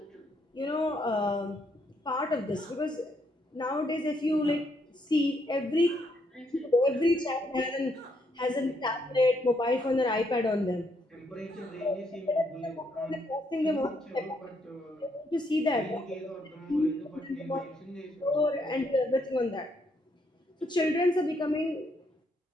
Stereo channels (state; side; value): normal; both; correlation 0.74